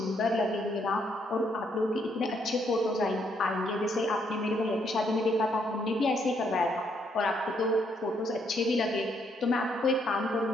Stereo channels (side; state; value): both; normal; correlation 0.72